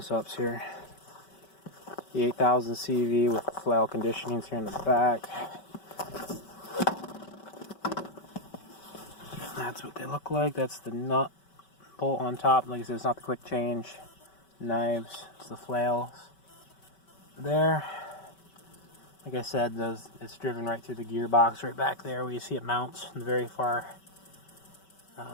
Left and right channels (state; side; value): late; right; 5.2 ms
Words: here. The EC800CV with flail conditionings here in the back. That's what they look like. That's the nut bolt on top. Like I said, it's not the quick change knives, it's the flails there. Like I said, it's driven right through the gearbox right back there where you see it mounts in the very far